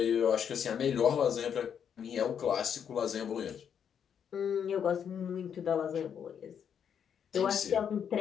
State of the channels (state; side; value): quieter; right; 8.0 dB